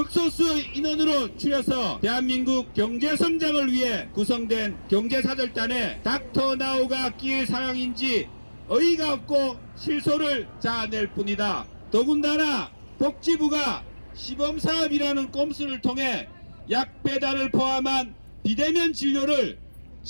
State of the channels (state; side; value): inverted; both; correlation -1.00